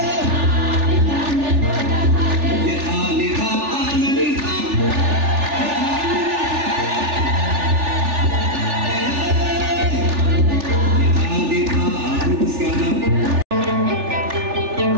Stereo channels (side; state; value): left; late; 3.4 ms